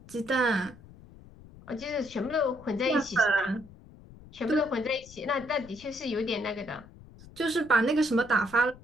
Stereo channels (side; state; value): left; noise; rumble, 21 dB below the sound